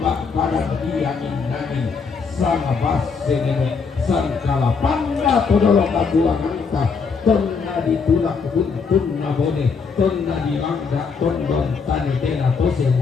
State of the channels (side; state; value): right; quieter; 5.3 dB